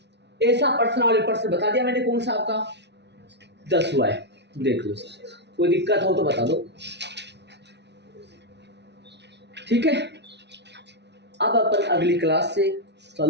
ऐसा प्रश्न वाले प्रश्न बता दिया मैंने कौन सा आपका 10 हुआ है, देख लो सर कोई दिक्कत हो तो बता दो, ठीक है। अब अपन अगली क्लास से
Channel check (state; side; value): late; left; 0.50 ms